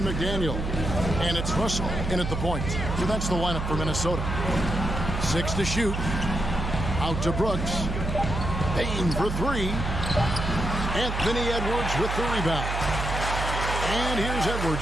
McDaniel. And it's Russell in at the point. So that's the lineup for Minnesota. 6 to shoot. Out to Brooks. Bain for 3. Anthony Edwards with the rebound. And here's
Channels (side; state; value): right; noise; hum, 3 dB below the sound